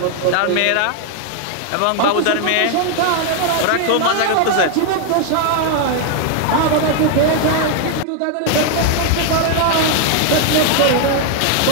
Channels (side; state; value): both; different; correlation 0.00